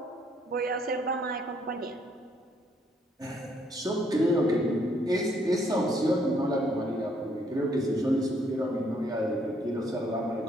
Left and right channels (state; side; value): normal; both; correlation 0.68